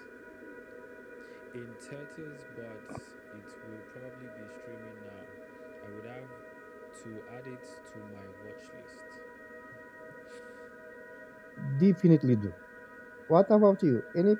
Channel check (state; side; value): identical; both; correlation 1.00